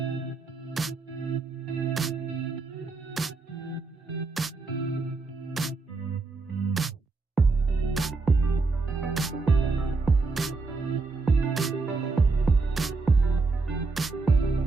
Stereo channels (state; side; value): quieter; left; 3.9 dB